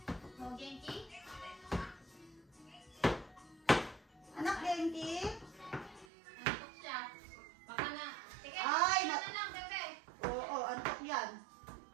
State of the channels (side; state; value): left; drops out; at 6.1 s